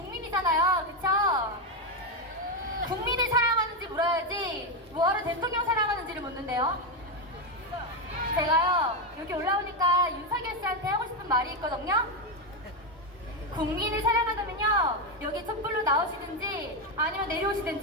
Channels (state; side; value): normal; both; correlation 0.07